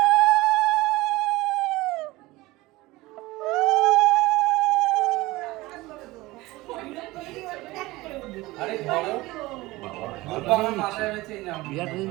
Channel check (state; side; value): quieter; left; 19.9 dB